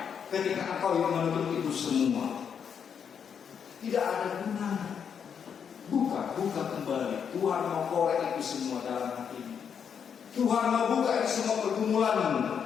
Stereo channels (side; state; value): right; quieter; 7.4 dB